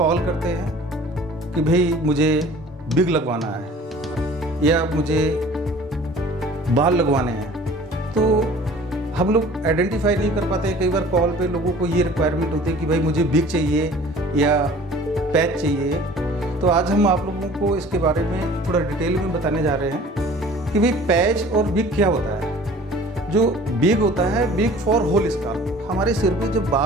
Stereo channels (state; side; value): normal; both; correlation 0.47